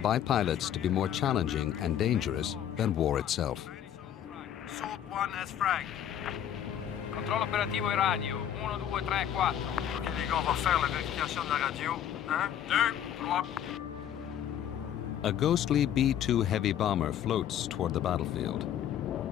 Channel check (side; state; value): right; quieter; 10.1 dB